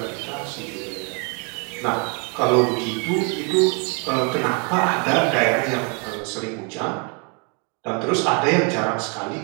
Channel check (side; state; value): left; quieter; 33.8 dB